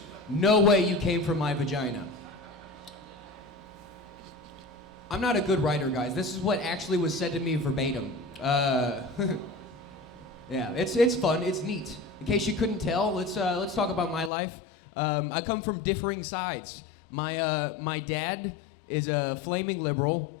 no way you came from my vagina." I'm not a good writer, guys. This is what actually was said to me verbatim. Yeah, it's fun, it's neat. In case you couldn't tell, let's talk about my life. I come from differing sides. My dad is a flaming liberal,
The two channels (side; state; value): right; drops out; at 14.3 s